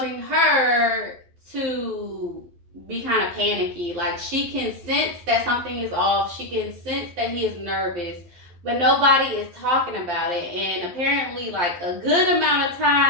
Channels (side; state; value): left; late; 12 ms